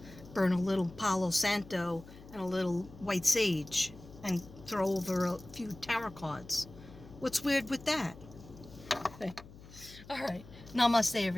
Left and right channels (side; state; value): left; noise; hum, 19 dB below the sound